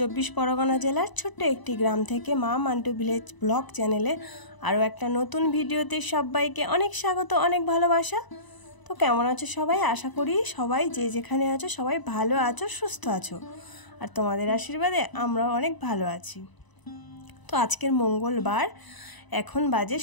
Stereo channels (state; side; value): late; right; 1.0 ms